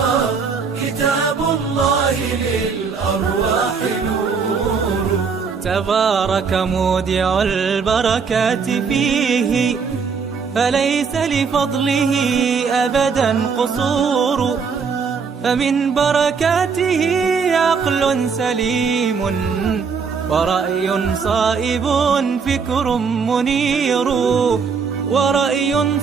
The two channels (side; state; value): left; quieter; 5.6 dB